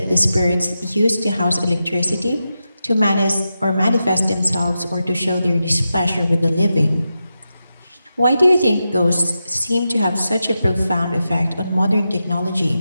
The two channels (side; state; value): both; inverted; correlation -0.90